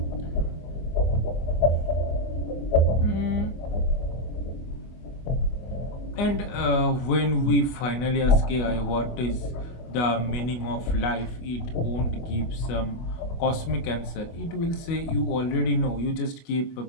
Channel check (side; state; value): right; late; 25 ms